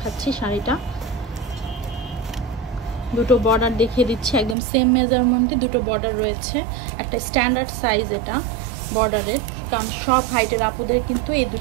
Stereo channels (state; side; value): drops out; left; at 4.5 s